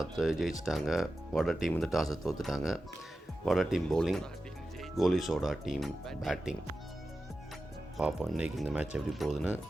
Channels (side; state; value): both; normal; correlation 0.93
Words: ஜெயிச்சிட்டாங்க. வட டீம் டாஸை தோற்றுட்டாங்க. வட டீம் பவுலிங், கோலி சோடா டீம் பேட்டிங். பார்ப்போம் இன்றைக்கி இந்த மேட்ச் எப்படி போகுதுன்னு.